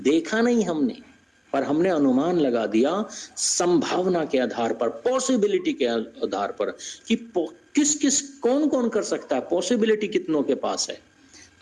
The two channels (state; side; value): identical; both; correlation 1.00